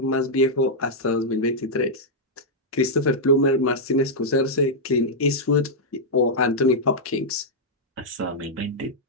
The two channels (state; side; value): normal; both; correlation -0.06